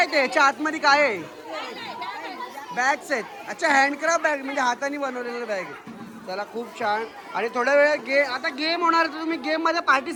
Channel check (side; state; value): both; identical; correlation 1.00